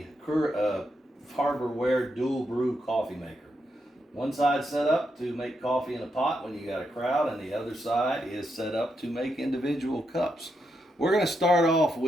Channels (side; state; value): both; normal; correlation 0.82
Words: Harborware dual brew coffee maker. One side set up to make coffee in a pot when you got a crowd, and the other side is set up to make individual cups. We're going to start off